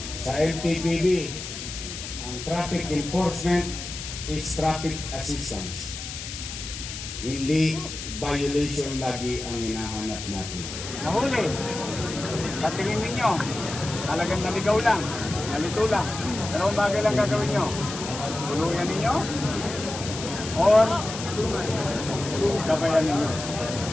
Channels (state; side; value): noise; left; hiss, 9 dB below the sound